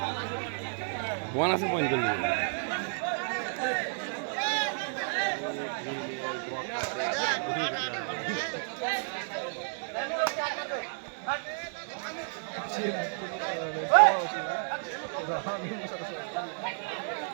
বোন আছে পয়েন্ট করলি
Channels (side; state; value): left; silent; 57 dB below the other